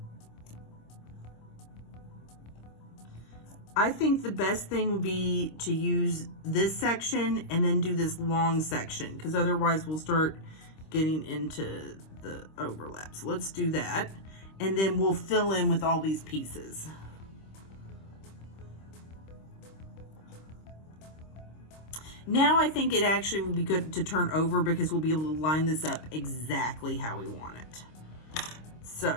I think the best thing would be to use this section and then do this long section, because otherwise we'll start getting into the overlap. So let's do that. And then we'll fill in with all these pieces. Now I think it actually would be good to turn over, because we'll be able to line this up exactly how we want it.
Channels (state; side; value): late; right; 26 ms